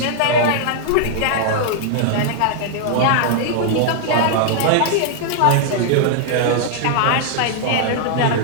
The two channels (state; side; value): different; both; correlation -0.01